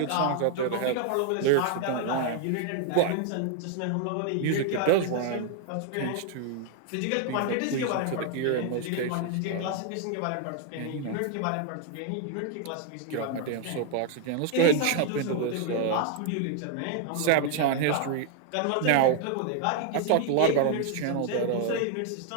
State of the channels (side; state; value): both; different; correlation 0.00